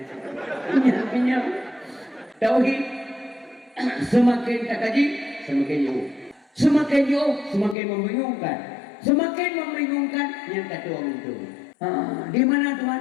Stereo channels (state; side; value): drops out; right; at 7.8 s